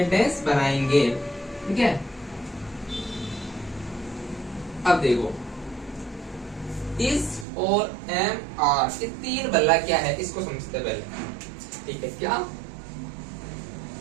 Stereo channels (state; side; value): drops out; left; at 7.5 s